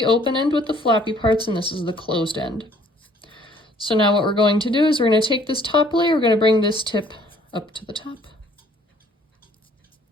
open end with the flappy parts and this is the closed end. So now what we're going to do is we're going to take this top layer, we're going to bring this tip up to the top.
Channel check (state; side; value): normal; both; correlation 0.59